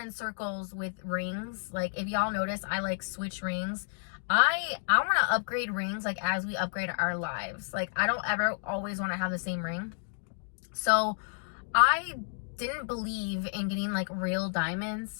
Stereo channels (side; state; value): right; silent; digital silence